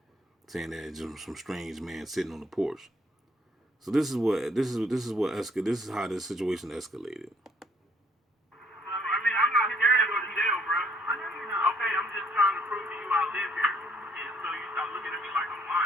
saying that it's just some strange man sitting on the porch. So this is how this situation escalated. I'm not scared of a jail, bro. Okay, I'm just trying to prove to you I live here. And so you start looking at me like I'm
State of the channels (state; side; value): normal; both; correlation 0.64